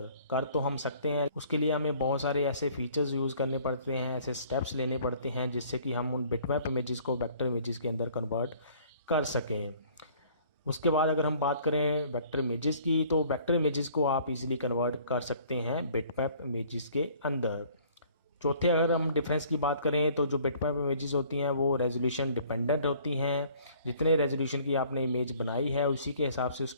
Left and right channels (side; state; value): both; inverted; correlation -0.56